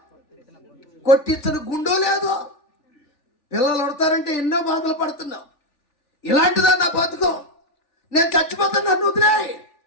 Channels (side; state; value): right; late; 3.4 ms